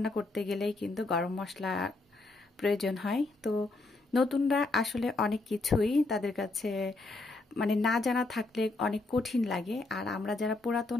করতে গেলেই কিন্তু গরম মশলা প্রয়োজন হয়। তো নতুনরা আসলে অনেক কিছুই তাদের কাছে মানে না জানা থাকলে অনেক কঠিন লাগে, আর আমরা যারা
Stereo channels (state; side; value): quieter; right; 3.3 dB